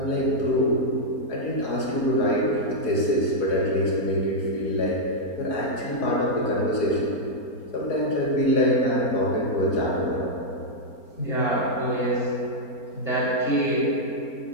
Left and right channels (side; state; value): right; late; 4.3 ms